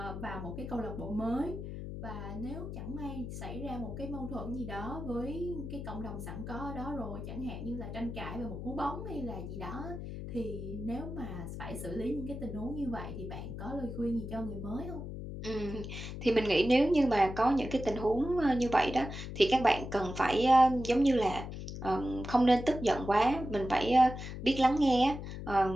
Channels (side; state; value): left; noise; hum, 8 dB below the sound